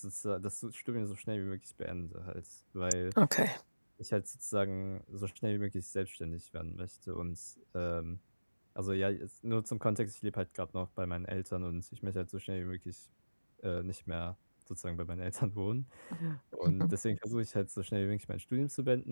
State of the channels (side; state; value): both; inverted; correlation -1.00